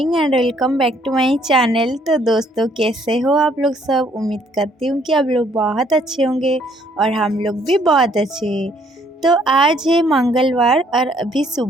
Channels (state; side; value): normal; both; correlation 0.65